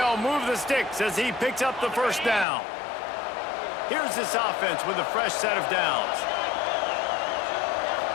move the sticks as he picks up the first down. Here's this offense with a fresh set of downs.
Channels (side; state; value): right; drops out; at 2.5 s